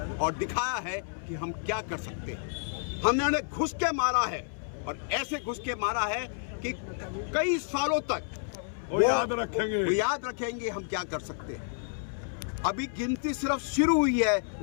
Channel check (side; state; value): right; silent; 58 dB below the other